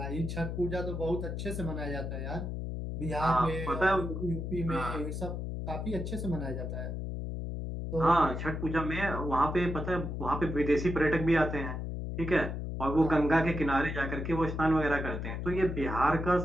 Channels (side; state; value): left; noise; hum, 4 dB below the sound